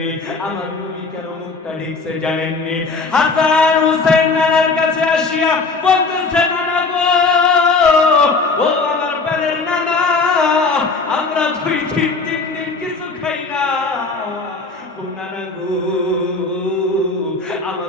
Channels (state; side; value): quieter; right; 4.0 dB